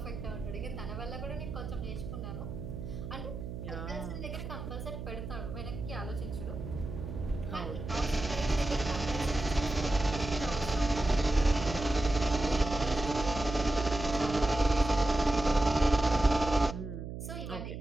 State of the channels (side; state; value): right; noise; hum, 8 dB below the sound